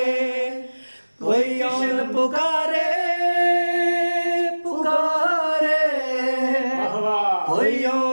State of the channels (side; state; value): both; inverted; correlation -1.00